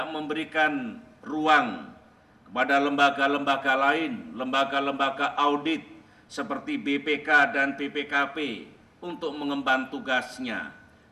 memberikan ruang kepada lembaga-lembaga lain, lembaga-lembaga audit seperti BPK dan BPKP untuk mengemban tugasnya,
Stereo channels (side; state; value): both; identical; correlation 1.00